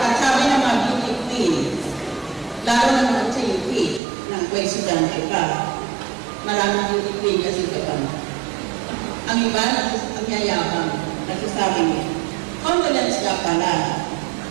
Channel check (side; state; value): left; drops out; at 4.0 s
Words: sabi ng mga beauty queen, lalo naman sa UP, ng estudyante ka, maraming beauty queen kasi ka pa. Ang iba, ang yayabang, nagsasabi niya, condolence ka pala